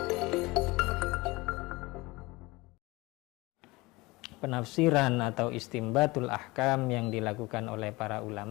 Penafsiran atau istimbatul ahkam yang dilakukan oleh para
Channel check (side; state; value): right; quieter; 22.7 dB